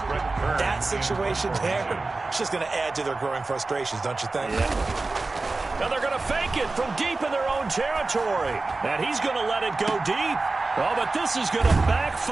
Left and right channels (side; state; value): left; quieter; 3.5 dB